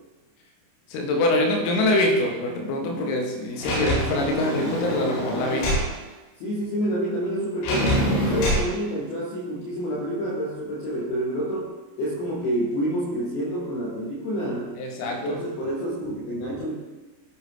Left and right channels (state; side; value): late; right; 28 ms